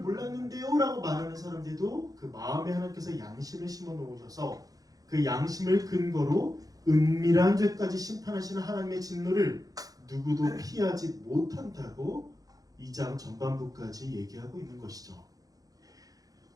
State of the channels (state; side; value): late; left; 0.18 ms